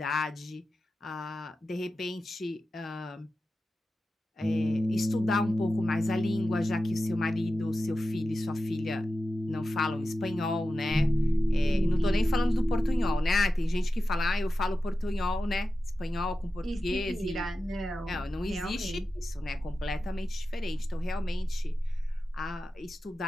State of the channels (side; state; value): both; normal; correlation 0.93